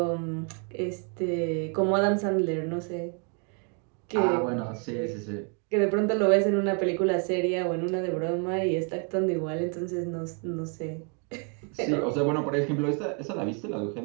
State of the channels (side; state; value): left; quieter; 38.7 dB